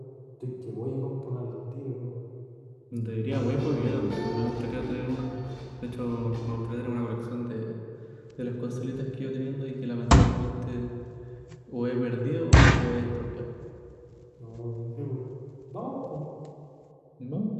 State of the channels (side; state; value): both; identical; correlation 1.00